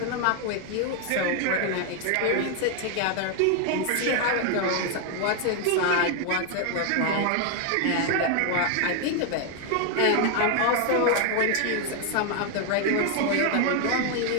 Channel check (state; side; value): different; both; correlation 0.01